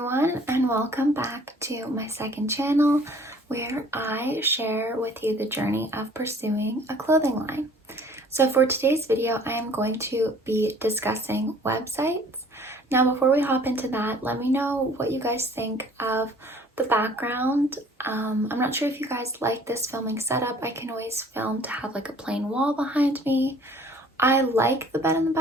and welcome back to my second channel where I share with you the journey of pursuing a clothing line. So for today's video, I am going to be discussing websites. Now before we hop into that, let me know what you guys think of the background. I'm not sure if you guys like this filming setup. I can always film to have like a plain wall behind me. I like the bed in the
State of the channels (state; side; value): normal; both; correlation 0.53